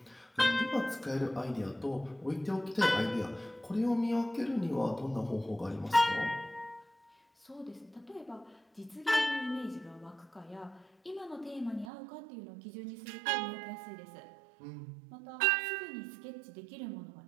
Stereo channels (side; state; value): left; drops out; at 11.9 s